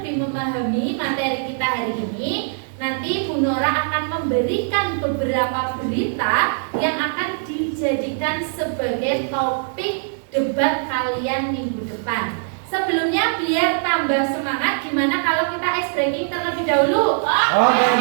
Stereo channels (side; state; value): left; silent; digital silence